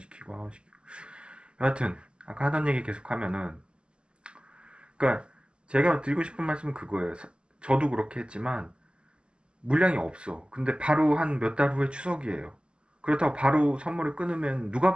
하고시키고 여하튼 아까 하던 얘기 계속하면은 그러니까 제가 드리고 싶은 말씀은 그거예요. 저도 그렇게 했지만 물량이 없어. 근데 바로 한 몇 달 후에 추석이에요. 그렇다고 바로 선물을 끊으면 누가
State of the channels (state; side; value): late; left; 0.051 ms